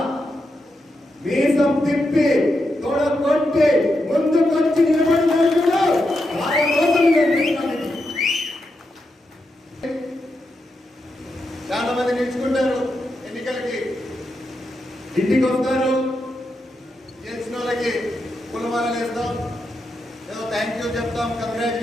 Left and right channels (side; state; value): both; normal; correlation 0.85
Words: మీసం తిప్పి తోడ కొట్టి ముందుకొచ్చి నిలబడినప్పుడు చాలా మంది నిలుచుకుంటారు. ఎన్నికలకి ఇంటికి వస్తారు, గెలిచిన వాళ్ళకి పులమాలలు వేస్తాం, ఏదో థ్యాంక్ యూ చెప్తాం,